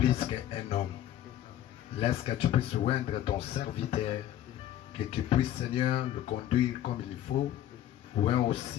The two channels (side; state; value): right; quieter; 12.0 dB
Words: qu'un homme. Laisse que tu puisses oindre ton serviteur, que tu puisses, Seigneur, le conduire comme il faut, oint